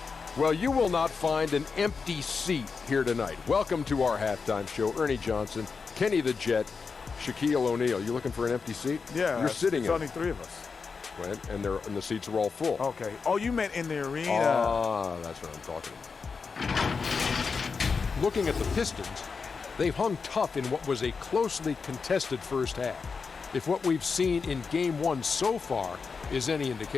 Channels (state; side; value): quieter; right; 5.1 dB